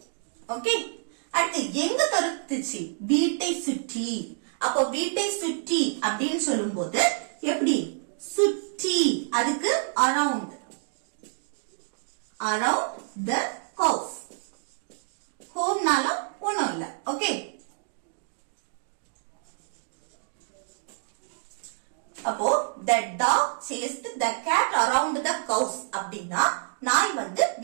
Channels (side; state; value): left; silent; digital silence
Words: ஓகே, அடுத்து எங்க துரத்துச்சு? வீட்டை சுற்றி. அப்போ வீட்டை சுற்றி அப்படின்னு சொல்லும் போது எப்படி? சுற்றி, அதுக்கு அரவுண்ட். Around the house. ஹோம்னாலும் ஒண்ணும் இல்ல. ஓகே, அப்போ the dog chased the cat around the house அப்படின்னா நாய் வந்து